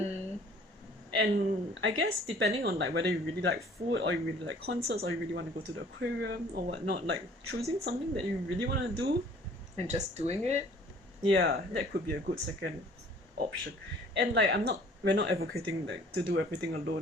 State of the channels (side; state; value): both; normal; correlation 0.53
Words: And I guess depending on like whether you really like food or you really like concerts or you really want to go to the aquarium or whatnot, like choosing something that you really want to do and just doing it. Yeah, that could be a good second option. And like we're not advocating like to do everything